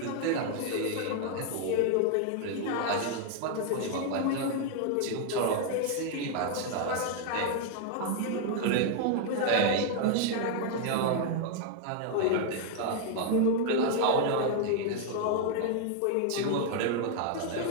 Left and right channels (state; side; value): different; both; correlation 0.00